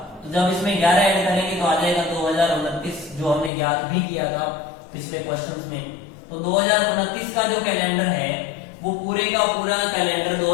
तो जब इसमें 11 ऐड करेंगे तो आ जाएगा 2029, जो हमने ज्ञात भी किया था पिछले क्वेश्चंस में। तो 2029 का जो कैलेंडर है वो पूरे का पूरा कैलेंडर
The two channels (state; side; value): drops out; right; at 3.5 s